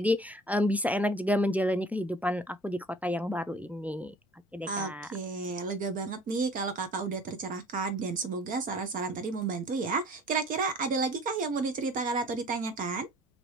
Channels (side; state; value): both; normal; correlation 0.49